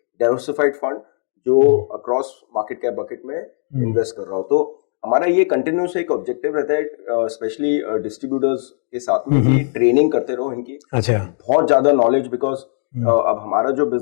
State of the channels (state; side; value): silent; right; digital silence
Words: डाइवर्सिफाइड फंड जो अक्रॉस मार्केट कैप बकेट में इन्वेस्ट कर रहा हो। तो हमारा ये कंटिन्यूस एक ऑब्जेक्टिव रहता है, स्पेशली डिस्ट्रीब्यूटर्स के साथ में, कि ट्रेनिंग करते रहो इनकी। अच्छा, बहुत ज्यादा नॉलेज, बिकॉज अब हमारा जो